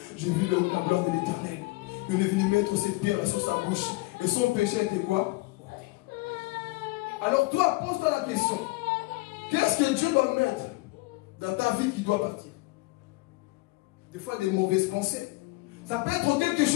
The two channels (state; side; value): quieter; right; 23.1 dB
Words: J'ai vu la gloire de l'Éternel. Il est venu mettre cette pierre sur sa bouche. Et son péché était quoi? Alors toi, pose-toi la question. Qu'est-ce que Dieu doit mettre dans ta vie qui doit partir? Des fois, des mauvaises pensées. Ça peut être quelque